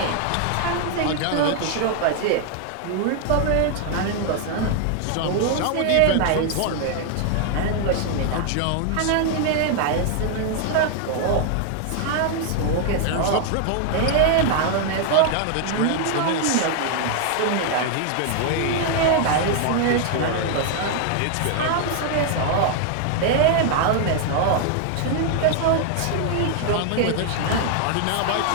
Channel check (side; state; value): both; different; correlation 0.00